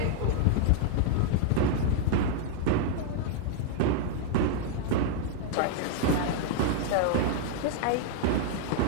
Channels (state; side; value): different; both; correlation 0.00